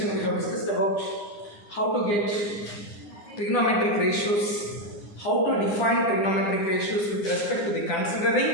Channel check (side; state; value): right; late; 10 ms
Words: we have discussed about how to get trigonometric ratios, how to define trigonometric ratios with respect to the